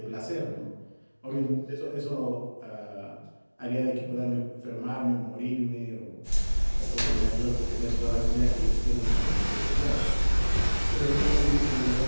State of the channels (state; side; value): inverted; both; correlation -1.00